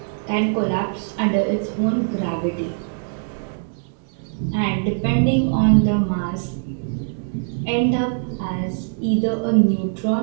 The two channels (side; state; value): left; silent; digital silence